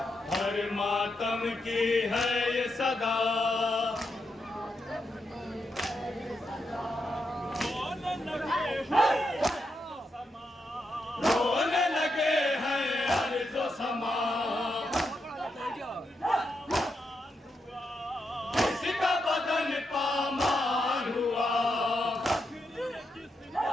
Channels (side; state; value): both; normal; correlation 0.84